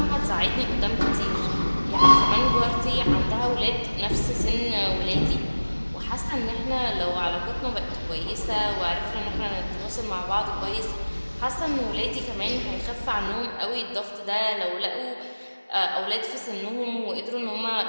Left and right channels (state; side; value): inverted; both; correlation -1.00